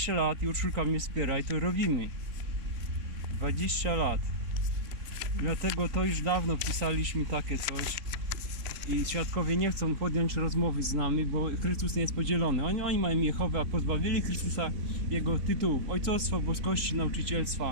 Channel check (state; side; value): late; left; 3.5 ms